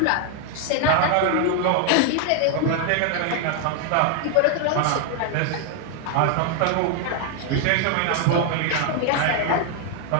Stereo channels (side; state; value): both; different; correlation 0.00